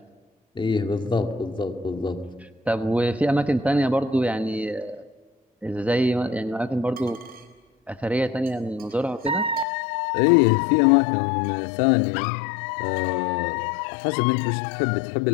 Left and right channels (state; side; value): drops out; right; at 9.7 s